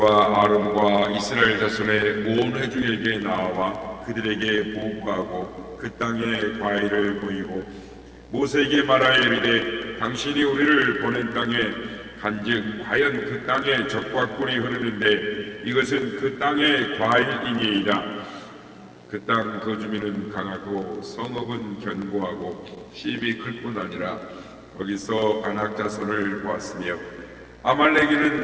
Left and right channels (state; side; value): identical; both; correlation 1.00